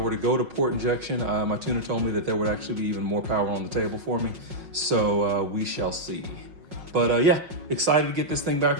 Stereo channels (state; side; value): late; left; 5.4 ms